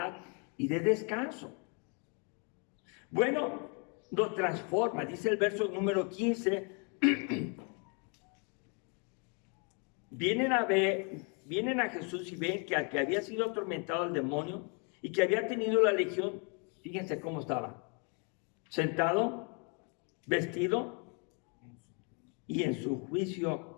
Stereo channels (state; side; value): quieter; right; 36.5 dB